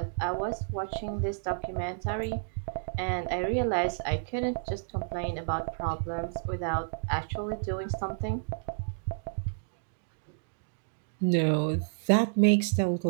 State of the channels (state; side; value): silent; left; digital silence